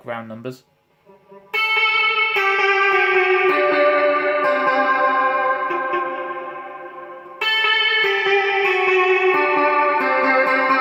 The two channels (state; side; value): identical; both; correlation 1.00